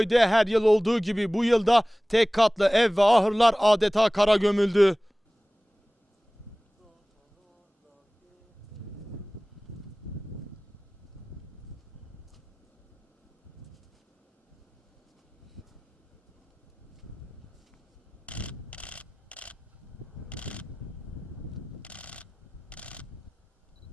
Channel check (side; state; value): both; normal; correlation 0.98